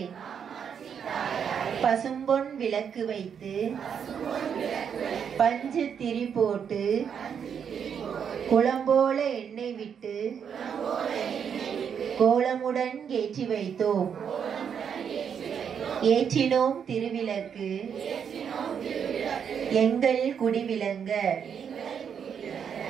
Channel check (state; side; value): quieter; left; 7.5 dB